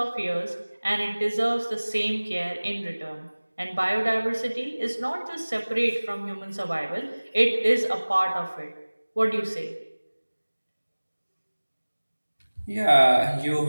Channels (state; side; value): inverted; both; correlation -1.00